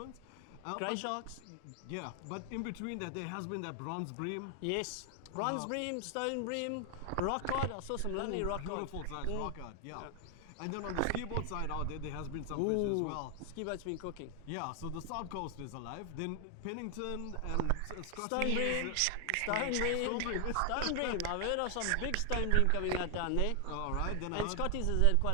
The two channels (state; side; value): different; both; correlation 0.00